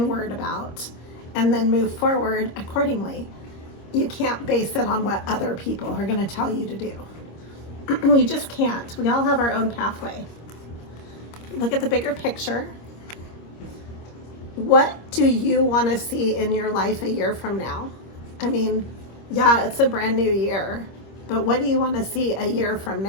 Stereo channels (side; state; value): right; late; 25 ms